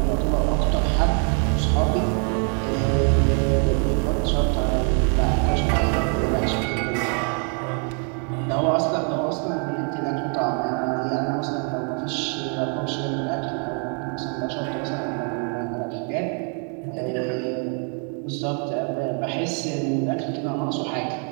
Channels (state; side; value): quieter; left; 39.3 dB